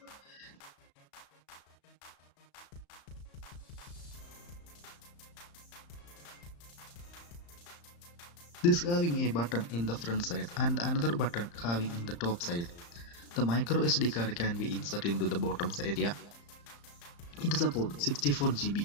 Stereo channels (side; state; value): right; late; 35 ms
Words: This having a button in the front side and another button having in the top side. The micro SD card can be inserted into the bottom area. It supports 64 GB.